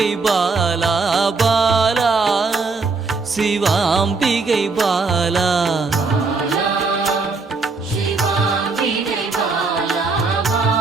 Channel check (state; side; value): quieter; left; 4.1 dB